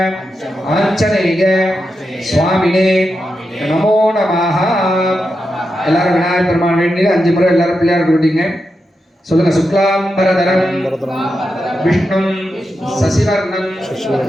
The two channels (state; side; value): normal; both; correlation 0.88